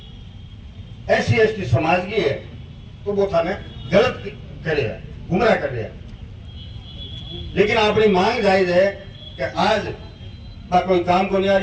SC/ST समाज की है तो वो थाने गलत करे, गुमराह कर रहे हैं। लेकिन अपनी मांग जायज है कि आज कोई काम को नहीं आ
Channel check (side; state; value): both; identical; correlation 1.00